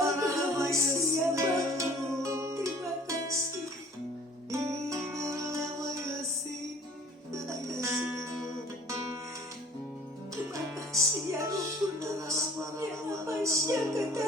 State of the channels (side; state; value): both; normal; correlation 0.51